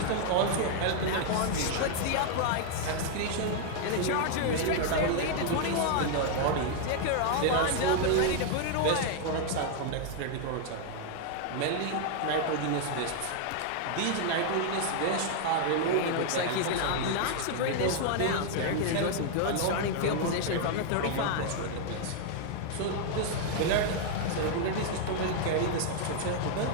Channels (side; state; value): both; different; correlation 0.00